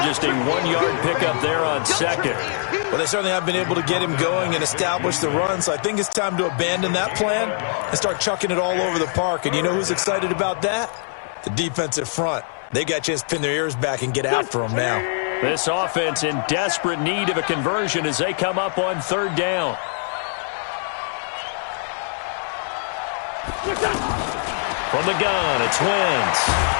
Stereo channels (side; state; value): right; silent; 64 dB below the other